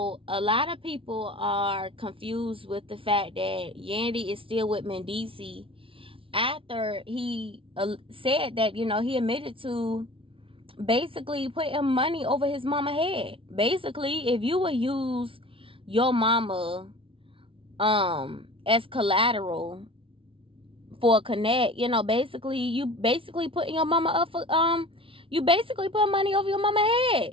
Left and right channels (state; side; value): late; left; 0.26 ms